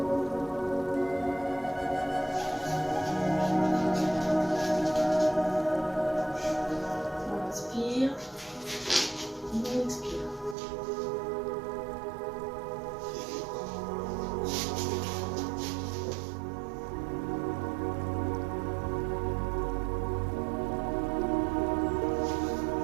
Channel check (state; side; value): drops out; left; at 10.6 s